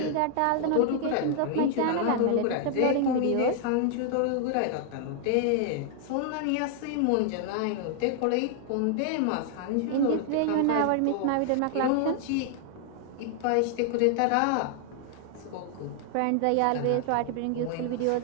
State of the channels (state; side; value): different; both; correlation 0.00